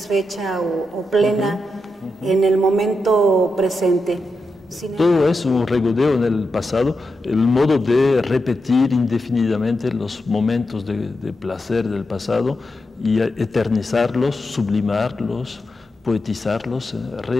o plena en el momento presente. Todo es un regodeo en el pasado, el modo de repetir indefinidamente los momentos de placer del pasado y eternizarlos, sublimarlos, poetizarlos,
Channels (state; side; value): normal; both; correlation 0.87